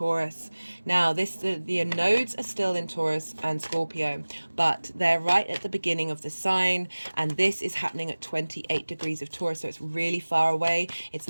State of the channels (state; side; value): inverted; both; correlation -1.00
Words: Now, the nodes are still in Taurus and Scorpio, but they're right at the beginning of the sign, and this is happening at 28 degrees of Taurus, so it's really far away. It's